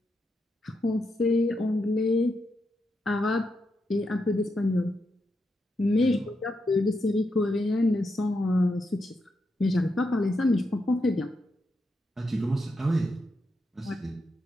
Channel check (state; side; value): normal; both; correlation 0.84